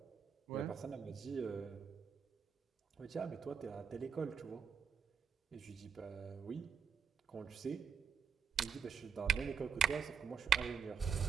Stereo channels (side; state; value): left; quieter; 6.8 dB